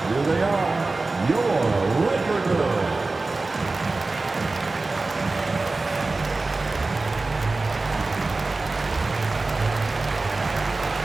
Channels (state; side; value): quieter; left; 3.4 dB